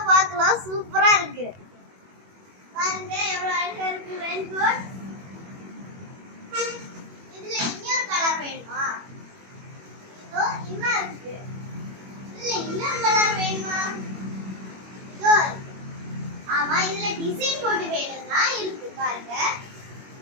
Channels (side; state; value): left; late; 21 ms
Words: பார்க்கலாம். சூப்பரா இருக்கு பாருங்க, எவ்வளோ அழகா இருக்கு ரெயின் கோட். இதுல இன்னொரு கலர் வேணுமா? இதோ இன்னும் இருக்கு. இல்ல இன்னொரு கலர் வேணுமா? இதோ ஆமா, இதுல டிசைன் போட்டு வேணும்னா இருக்கு பாருங்க.